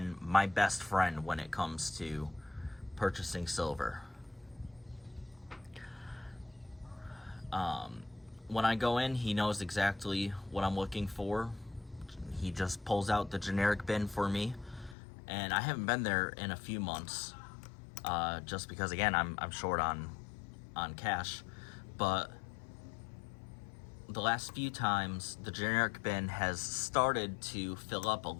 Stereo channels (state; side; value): drops out; right; at 15.0 s